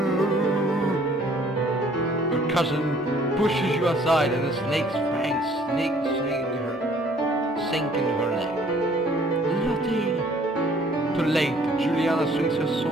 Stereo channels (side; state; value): both; normal; correlation 0.58